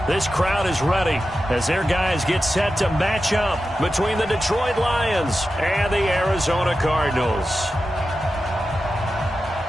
This crowd is ready as their guys get set to match up between the Detroit Lions and the Arizona Cardinals.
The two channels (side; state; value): both; normal; correlation 0.92